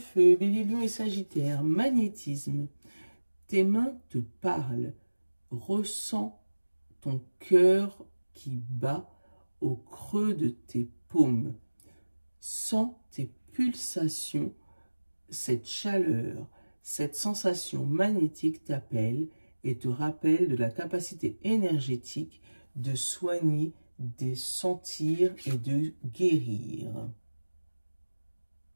Bélier, Lion et Sagittaire, magnétisme. Tes mains te parlent. Ressens ton cœur qui bat au creux de tes paumes. Sens tes pulsations, cette chaleur, cette sensation magnétique t'appelle et te rappelle de la capacité énergétique de soigner, de sentir et de guérir.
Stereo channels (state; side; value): inverted; both; correlation -1.00